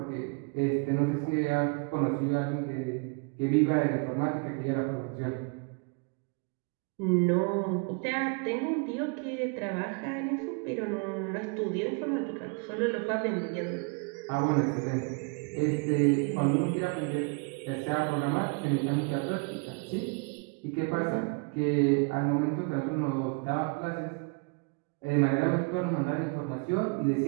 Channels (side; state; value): left; quieter; 34.0 dB